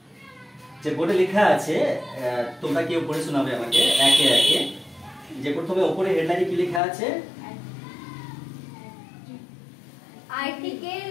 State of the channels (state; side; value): drops out; right; at 6.8 s